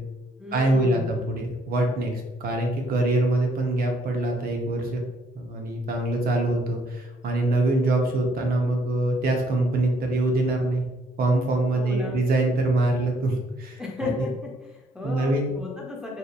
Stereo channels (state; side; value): normal; both; correlation 0.69